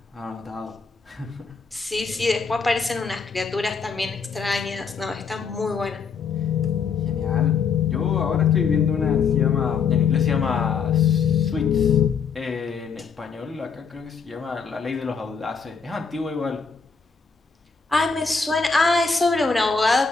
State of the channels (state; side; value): quieter; right; 5.6 dB